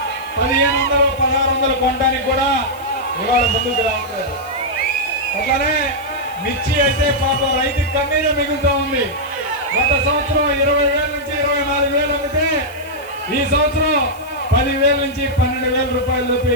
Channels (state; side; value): noise; left; hiss, 22 dB below the sound